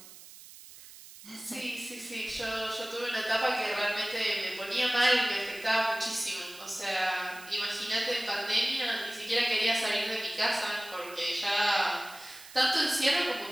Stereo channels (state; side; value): noise; right; hiss, 18 dB below the sound